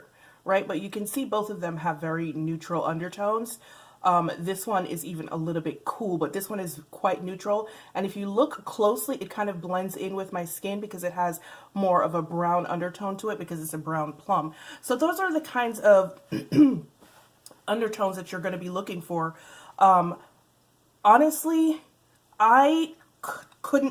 right? But you can see both of them have very neutral undertones. This one is even a little bit cool, but this one is quite neutral. And if you look closely, it kind of blends in with my skin because it has more of a brown undertone to it because it's a brown plum. So those are the kinds of undertones that you're going to be looking for. Honestly, I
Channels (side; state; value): both; identical; correlation 1.00